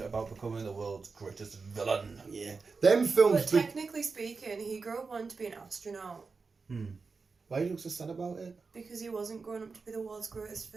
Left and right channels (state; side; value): quieter; left; 4.6 dB